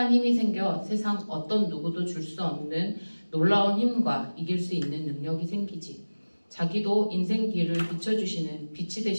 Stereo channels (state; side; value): inverted; both; correlation -1.00